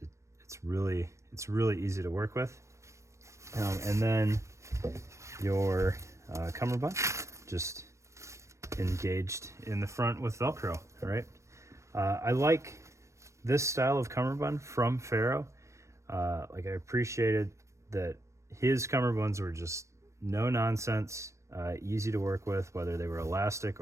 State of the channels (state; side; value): late; left; 0.14 ms